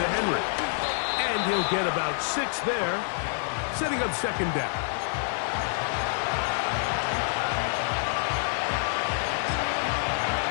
Henry. And he'll get about 6 there, setting up second down.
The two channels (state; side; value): silent; right; 60 dB below the other